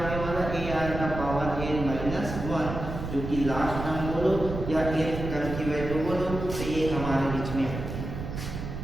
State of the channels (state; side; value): noise; right; rumble, 6 dB below the sound